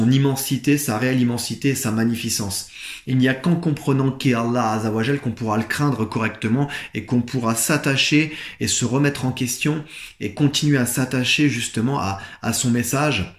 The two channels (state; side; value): identical; both; correlation 1.00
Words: immensité, sa réelle immensité et sa magnificence. Il n'y a qu'en comprenant qui est Allah Azawajal qu'on pourra le craindre correctement et qu'on pourra s'attacher et se remettre en question et continuer à s'attacher justement à son message,